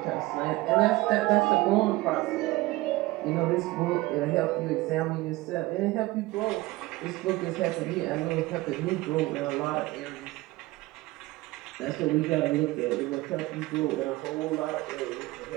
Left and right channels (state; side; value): quieter; left; 19.4 dB